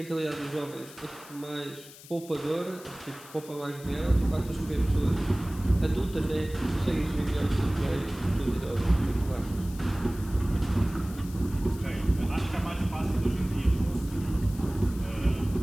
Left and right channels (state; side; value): noise; left; hiss, 19 dB below the sound